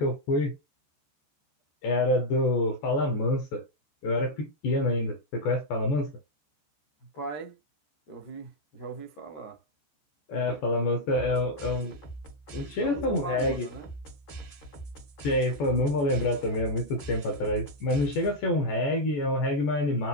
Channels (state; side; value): late; right; 14 ms